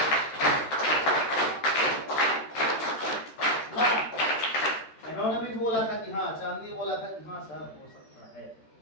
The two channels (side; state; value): right; late; 13 ms